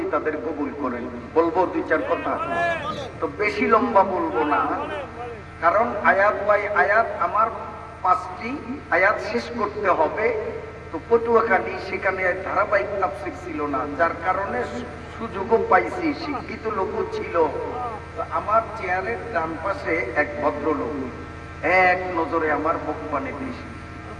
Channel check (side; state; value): both; identical; correlation 1.00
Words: তাদের কবুল করেন। বলবো 2-4 কথা, তো বেশি লম্বা বলবো না, কারণ আয়াত বাই আয়াত আমার 5টি আয়াত শেষ করতে হবে। তো পটুয়াখালী সেখানে ধারাবাহিক তাফসীর ছিল না, যার কারণে সুযোগও পাইছি, শিক্ষিত লোকও ছিল। তো আমার চেয়ারের ডান পাশে এক ভদ্রলোক এক নজরে আমার বক্তব্যে বেশি